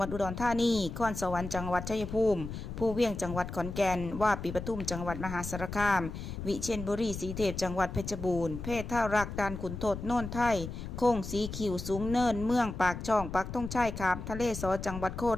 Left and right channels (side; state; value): left; noise; rumble, 8 dB below the sound